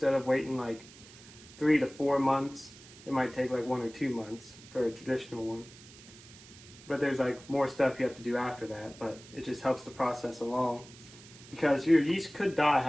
of waiting like 3 to 4 months, it might take like 1 or 2 months for a traditional one. But there's like more stuff you have to do after that, but it just helps the process along. Because your yeast could die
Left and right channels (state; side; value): noise; right; hiss, 20 dB below the sound